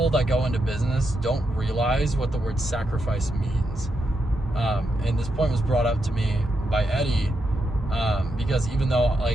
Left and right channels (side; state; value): both; normal; correlation 0.83